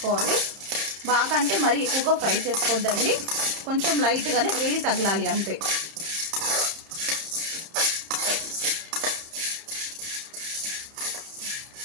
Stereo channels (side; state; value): left; late; 30 ms